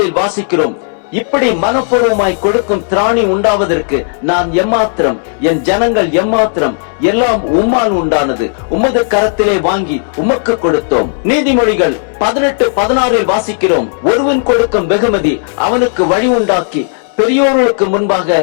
வாசிக்கிறோம்: இப்படி மனப்பூர்வமாய் கொடுக்கும் திராணி உண்டாவதற்கு நான் எம்மாத்திரம், என் ஜனங்கள் எம்மாத்திரம், எல்லாம் உம்மால் உண்டானது. உமது கரத்திலே வாங்கி உமக்கு கொடுத்தோம். நீதிமொழிகள் 18:16 வாசிக்கிறோம்: ஒருவன் கொடுக்கும் வெகுமதி அவனுக்கு வழி உண்டாக்கி பெரியோர்களுக்கு முன்பாக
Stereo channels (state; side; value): silent; right; digital silence